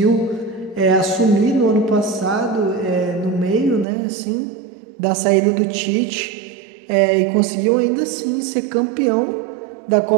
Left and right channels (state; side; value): drops out; left; at 3.9 s